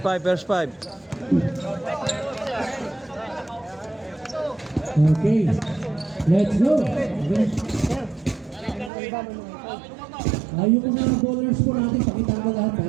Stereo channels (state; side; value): drops out; left; at 8.9 s